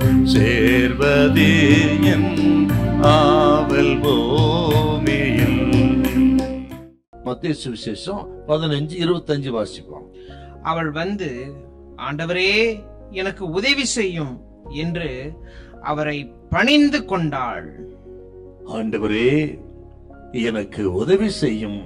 சேர்வதே என் ஆவல் பூமியில். மத்தேயு சுவிசேஷம் 15:25 வாசிப்போம். அவள் வந்து, ஆண்டவரே எனக்கு உதவி செய்யும் என்று அவரை பணிந்து கொண்டாள். ஆண்டவரே எனக்கு உதவி செய்யும்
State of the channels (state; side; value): identical; both; correlation 1.00